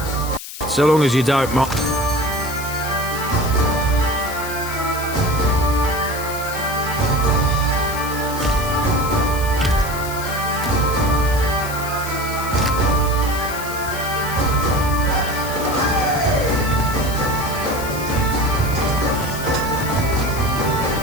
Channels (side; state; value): left; noise; hiss, 11 dB below the sound